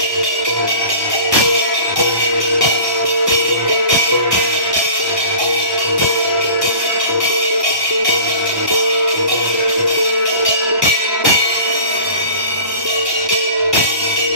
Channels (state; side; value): late; left; 1.2 ms